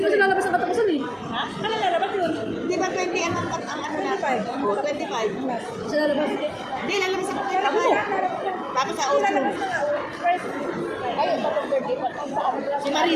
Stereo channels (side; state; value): both; identical; correlation 1.00